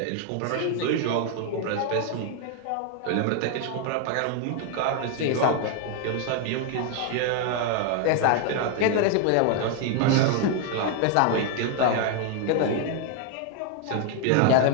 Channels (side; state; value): both; different; correlation 0.00